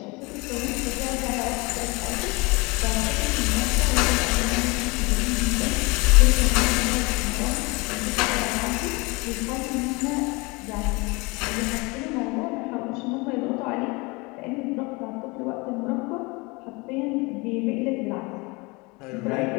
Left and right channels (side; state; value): right; quieter; 26.2 dB